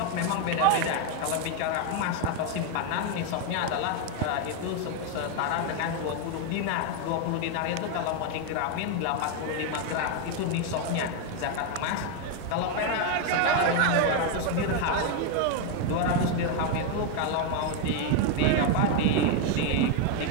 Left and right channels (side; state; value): both; different; correlation 0.01